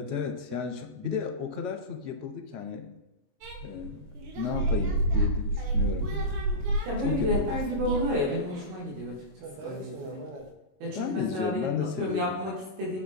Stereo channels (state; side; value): late; left; 22 ms